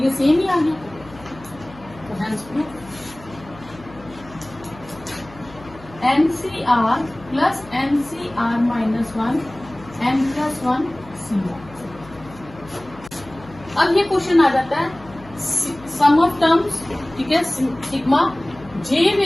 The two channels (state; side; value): noise; left; hum, 20 dB below the sound